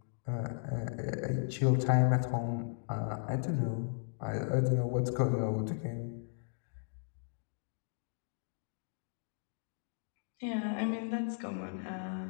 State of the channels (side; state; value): right; silent; digital silence